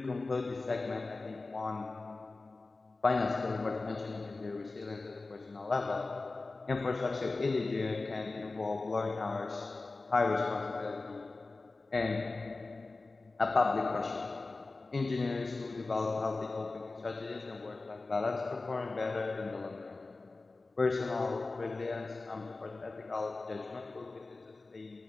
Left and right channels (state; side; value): quieter; right; 3.5 dB